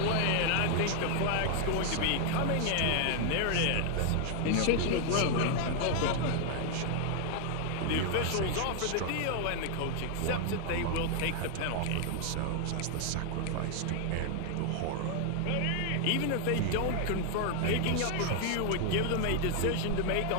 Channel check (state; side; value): different; both; correlation 0.00